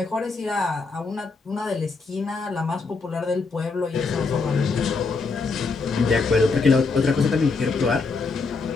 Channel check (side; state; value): right; quieter; 4.3 dB